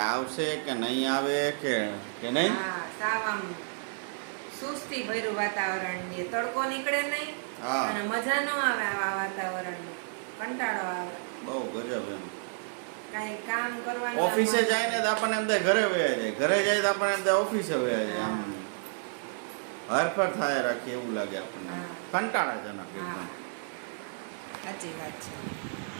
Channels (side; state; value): left; silent; digital silence